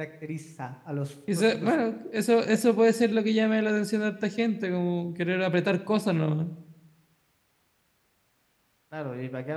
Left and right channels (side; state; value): both; identical; correlation 1.00